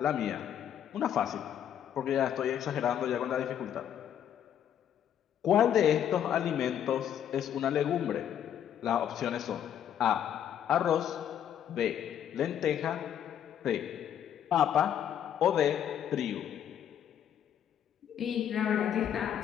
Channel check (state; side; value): quieter; right; 9.7 dB